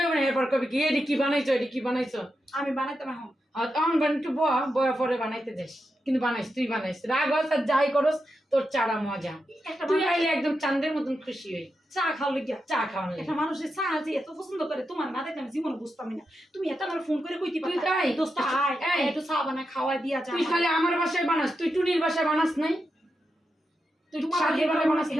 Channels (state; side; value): normal; both; correlation 0.87